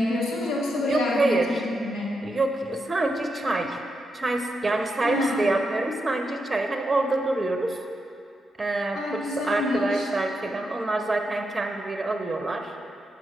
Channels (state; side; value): normal; both; correlation 0.84